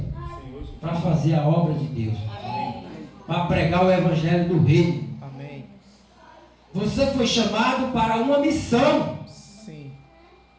para fazer a obra de Deus, para pregar o evangelho do reino. Amém. Você foi chamado para uma missão. Sim.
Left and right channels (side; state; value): both; identical; correlation 1.00